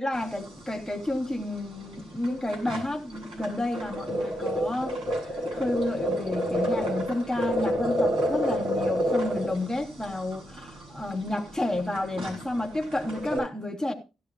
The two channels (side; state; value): both; normal; correlation 0.84